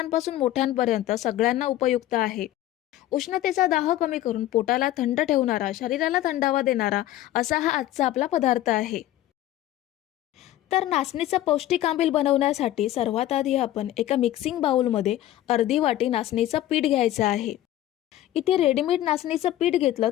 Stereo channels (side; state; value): right; quieter; 13.8 dB